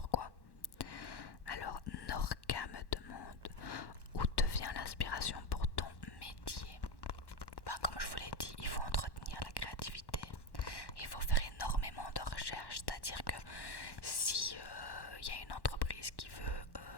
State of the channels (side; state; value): right; late; 1.1 ms